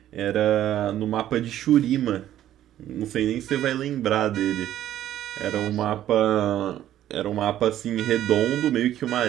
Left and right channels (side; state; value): left; quieter; 12.2 dB